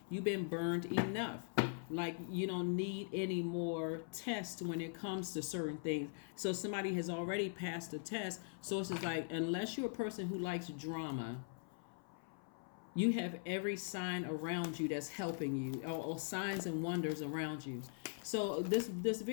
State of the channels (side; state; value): right; silent; 50 dB below the other